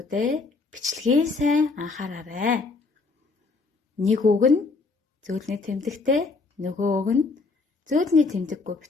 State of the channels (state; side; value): quieter; right; 4.0 dB